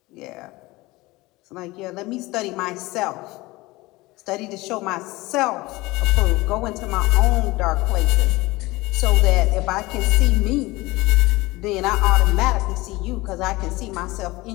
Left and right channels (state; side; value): quieter; right; 20.9 dB